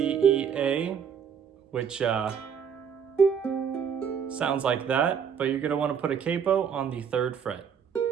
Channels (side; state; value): left; quieter; 7.4 dB